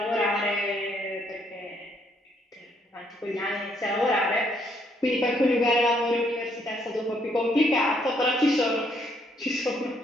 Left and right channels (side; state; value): both; normal; correlation 0.70